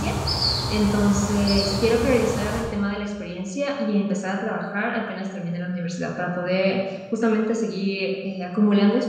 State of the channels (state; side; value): identical; both; correlation 1.00